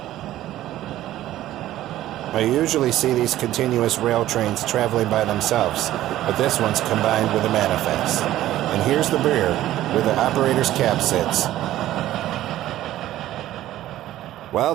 I usually see these continuous rail trains traveling by themselves, but this one's combined with a manifest. And here's the rear, where the operator's cab sits. Well,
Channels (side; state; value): left; quieter; 14.0 dB